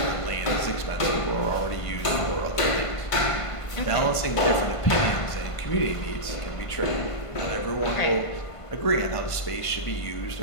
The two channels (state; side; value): late; right; 1.5 ms